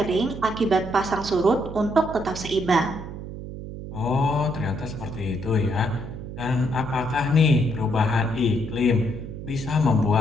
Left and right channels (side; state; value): right; noise; hum, 10 dB below the sound